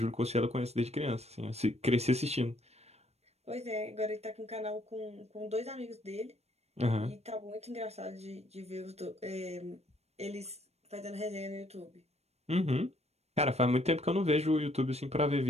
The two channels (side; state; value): left; late; 0.31 ms